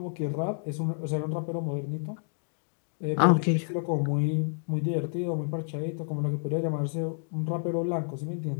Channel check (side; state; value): right; silent; digital silence